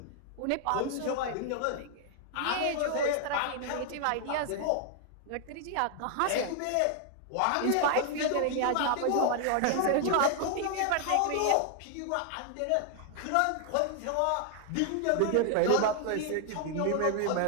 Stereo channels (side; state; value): both; different; correlation 0.00